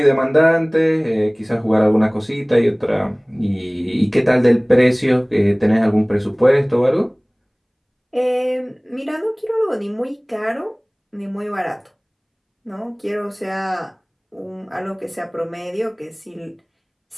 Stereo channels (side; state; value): both; identical; correlation 1.00